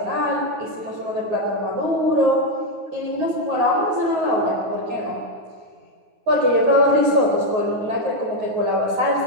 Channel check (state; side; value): late; left; 9.5 ms